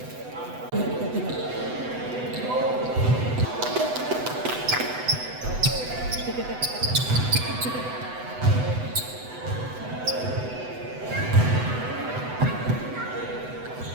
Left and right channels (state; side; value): late; left; 8.0 ms